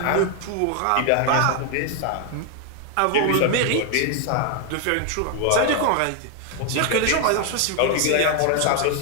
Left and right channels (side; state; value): both; different; correlation 0.01